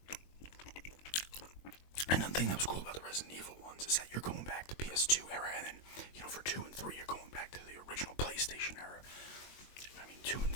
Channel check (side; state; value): right; late; 22 ms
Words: And the thing that was cool about the Resident Evil ones is that you're going back to PS2 era, and then, for 2 and 3, you're going back to the original PlayStation era. I mean, 2 and